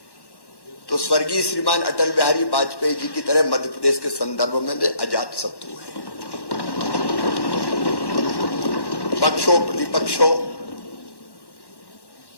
तो स्वर्गीय श्रीमान अटल बिहारी वाजपेयी जी की तरह मध्य प्रदेश के संदर्भ में वे अजात शत्रु हैं। पक्षों प्रतिपक्षों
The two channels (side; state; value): right; late; 1.1 ms